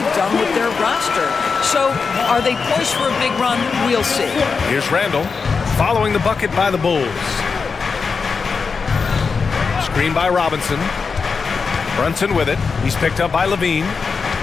done with their roster. So, are they poised for a big run? We'll see. Here's Randall, following the bucket by the Bulls. Screen by Robinson. Brunson with it. He's picked up by Levine.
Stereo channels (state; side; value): quieter; right; 5.1 dB